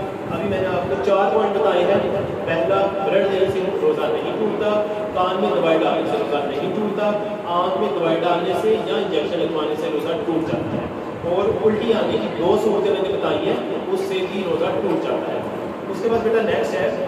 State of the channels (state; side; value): identical; both; correlation 1.00